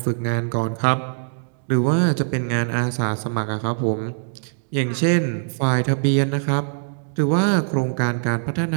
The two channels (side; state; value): left; silent; digital silence